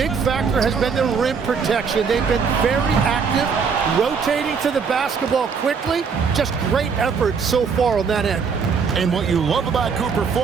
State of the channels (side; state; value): left; quieter; 5.8 dB